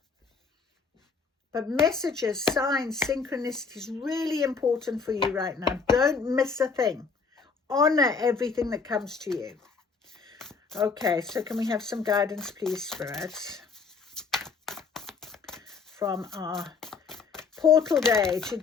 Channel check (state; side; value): quieter; right; 5.0 dB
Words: but messages, signs, synchronicity is really important for you right now. Don't miss a thing. Honor everything that comes to you. Okay, so can we have some guidance, please, spirits, from our portal day